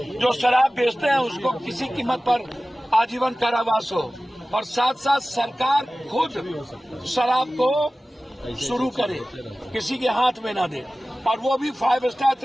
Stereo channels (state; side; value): normal; both; correlation 0.97